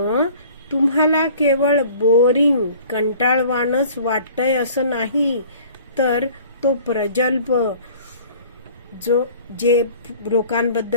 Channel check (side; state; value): both; inverted; correlation -0.49